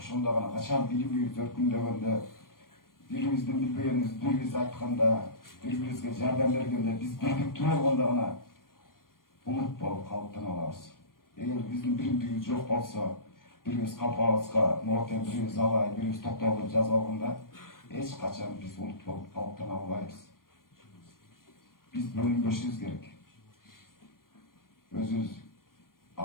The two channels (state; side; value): late; right; 0.91 ms